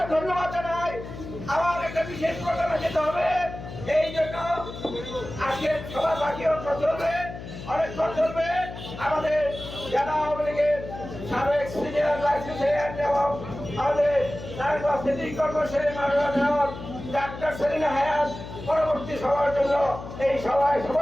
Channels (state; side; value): noise; left; hum, 11 dB below the sound